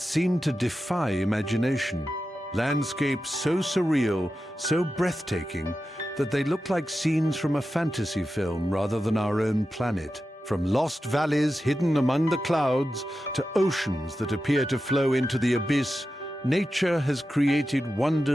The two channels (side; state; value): both; normal; correlation 0.92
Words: seem to defy imagination. Landscapes so surreal, so breathtaking, that they look like scenes from a fantasy film rather than our own planet. From lost valleys hidden among the clouds to oceans that appear to flow into the abyss, nature has created